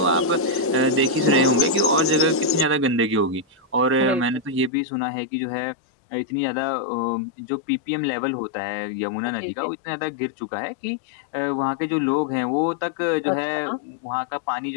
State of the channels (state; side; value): drops out; right; at 4.7 s